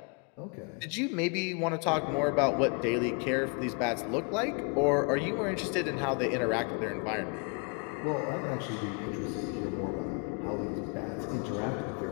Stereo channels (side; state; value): right; quieter; 35.2 dB